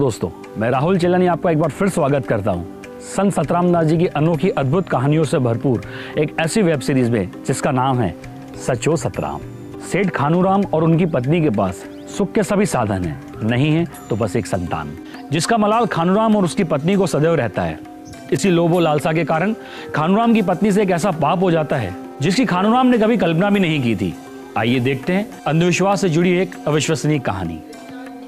मैं राहुल चेलानी आपका एक बार फिर स्वागत करता हूं संत सतराम दास जी की अनोखी अद्भुत कहानियों से भरपूर एक ऐसी वेब सीरीज में जिसका नाम है सचो सतराम। सेठ खानूराम और उनकी पत्नी के पास सुख के सभी साधन हैं, नहीं है तो बस एक संतान जिसका मलाल खानूराम और उसकी पत्नी को सदैव रहता है। इसी लोभ लालसा के कारण खानूराम की पत्नी से एक ऐसा पाप हो जाता है जिसकी खानूराम ने कभी कल्पना भी नहीं की थी। आइए देखते हैं अंधविश्वास से जुड़ी एक अविश्वसनीय कहानी,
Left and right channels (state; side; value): identical; both; correlation 1.00